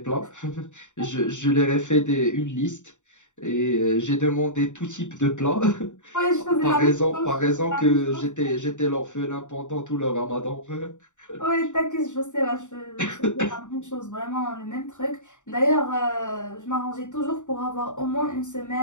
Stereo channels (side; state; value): right; late; 0.85 ms